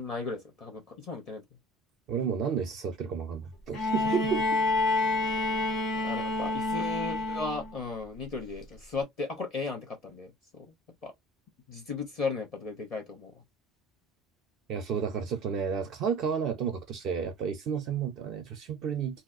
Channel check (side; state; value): both; normal; correlation 0.46